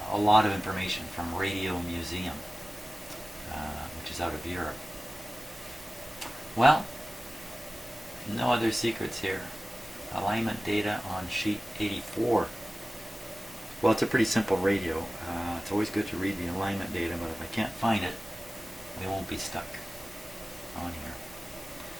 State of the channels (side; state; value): both; normal; correlation 0.96